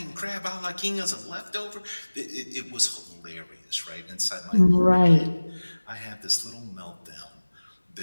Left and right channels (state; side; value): inverted; both; correlation -1.00